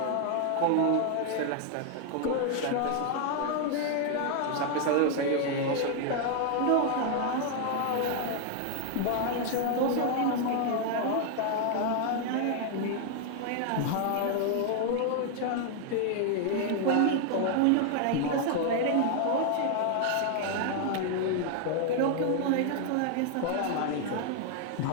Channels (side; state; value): both; different; correlation 0.00